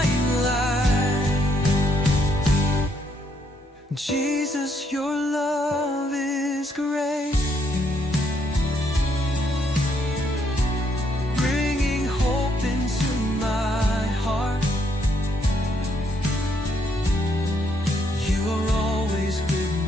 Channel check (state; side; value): normal; both; correlation 0.73